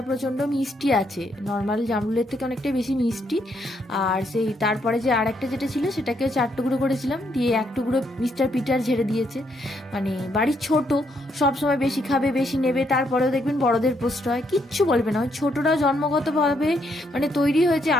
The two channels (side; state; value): both; normal; correlation 0.74